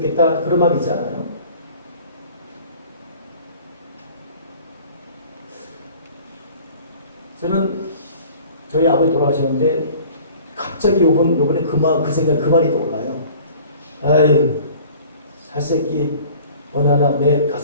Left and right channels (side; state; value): both; inverted; correlation -0.48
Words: 그런 마음이 있잖아요. 저는 저희 아버지 돌아가셨는데 갑자기 요번에 그 생각 그 말이 떠올라요. 아유 살새끼 어느 하나 내